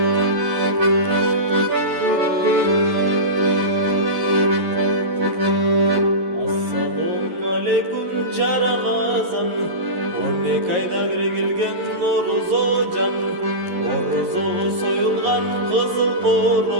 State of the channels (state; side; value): late; left; 11 ms